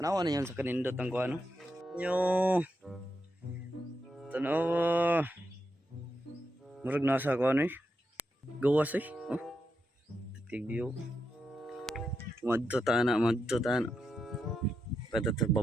na yun sa kanindot ang Kuan no? Nyo. Tanawa. Murag nasa Kuan eh. Gawas eh. Oh. Titig view. Madto tana. Pata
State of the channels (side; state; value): both; normal; correlation 0.85